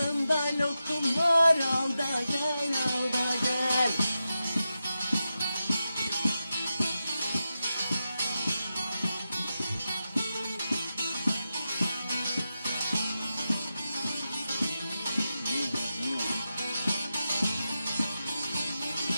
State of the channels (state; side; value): inverted; both; correlation -0.90